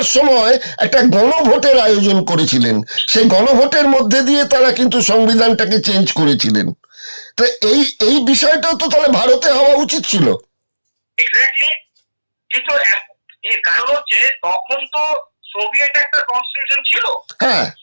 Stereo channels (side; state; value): both; inverted; correlation -1.00